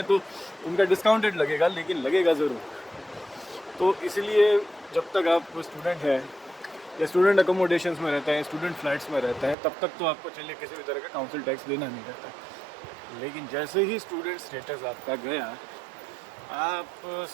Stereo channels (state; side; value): drops out; left; at 9.6 s